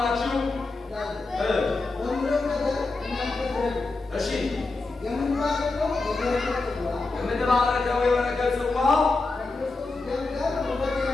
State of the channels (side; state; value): right; quieter; 3.5 dB